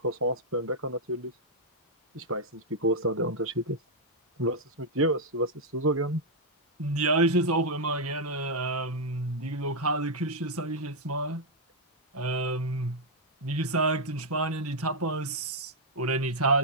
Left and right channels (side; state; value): both; normal; correlation -0.04